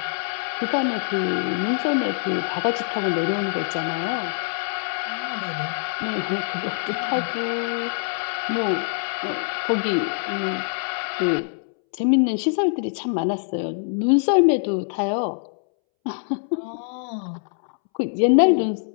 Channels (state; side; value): silent; right; 63 dB below the other